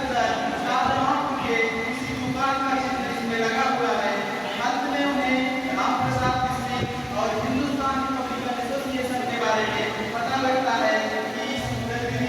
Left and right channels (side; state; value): both; identical; correlation 1.00